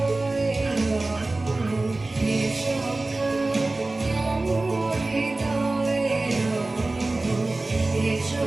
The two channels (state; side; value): quieter; left; 3.1 dB